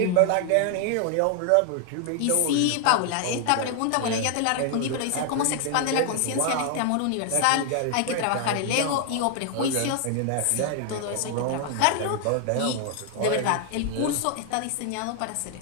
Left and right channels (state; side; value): different; both; correlation 0.00